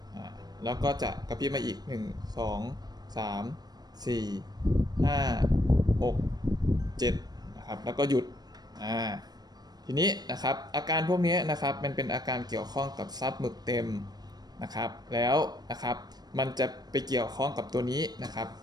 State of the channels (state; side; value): late; left; 0.19 ms